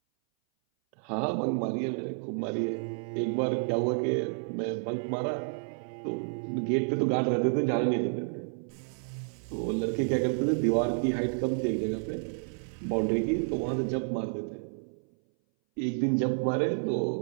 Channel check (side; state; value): left; silent; 58 dB below the other